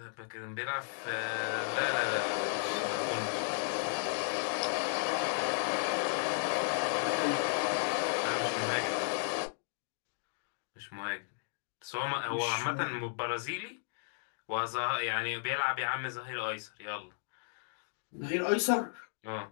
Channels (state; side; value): silent; right; digital silence